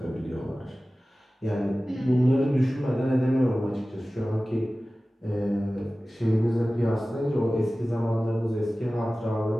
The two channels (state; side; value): normal; both; correlation 0.97